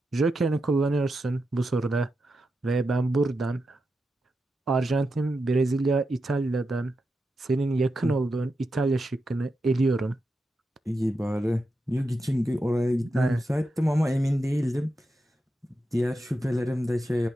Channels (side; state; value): both; normal; correlation 0.88